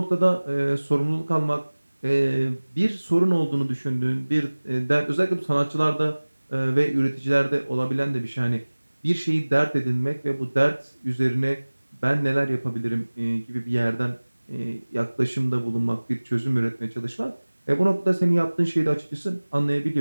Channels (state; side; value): inverted; both; correlation -1.00